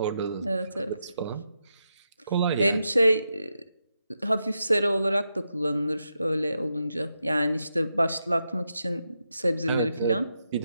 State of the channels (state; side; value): inverted; both; correlation -0.85